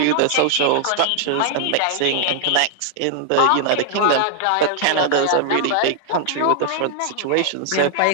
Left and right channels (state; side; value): different; both; correlation 0.00